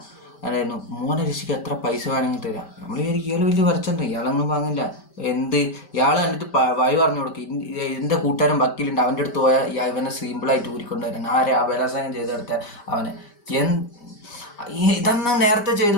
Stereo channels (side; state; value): right; late; 5.1 ms